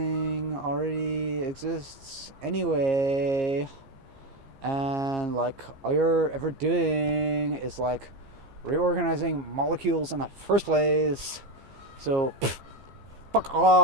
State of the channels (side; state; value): left; late; 15 ms